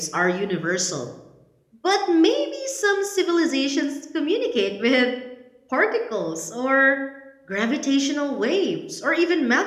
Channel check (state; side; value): identical; both; correlation 1.00